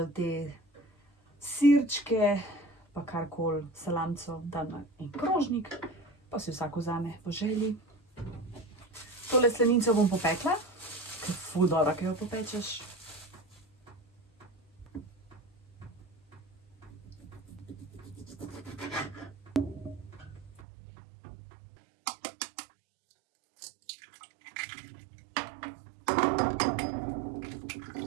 te sirčke, pa karkoli, salamco, dam na en krožnik, pa si vsak vzame po želji. Tole slanico bom popekla, ker je ful dobra, ki jo popečeš.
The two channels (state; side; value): drops out; left; at 20.6 s